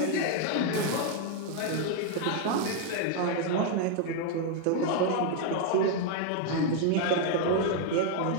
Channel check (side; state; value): both; different; correlation 0.00